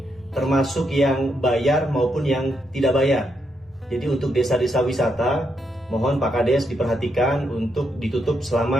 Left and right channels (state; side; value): normal; both; correlation 0.80